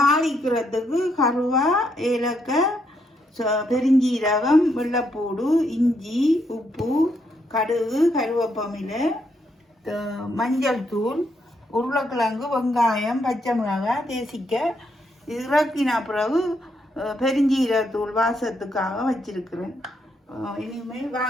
கருவா, ஏலக்காய், பெருஞ்சீரகம், வெள்ளைப்பூடு, இஞ்சி, உப்பு, கடுகு, கருவேப்பமிலை, மஞ்சள் தூள், உருளைக்கிழங்கு, வெங்காயம், பச்சை மிளகாய், தேசிக்காய். இறக்கின பிறகு பெருஞ்சீரகத்தூள் வாசத்துக்காக வச்சிருக்கிறேன். இனிமேல்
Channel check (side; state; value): both; normal; correlation 0.76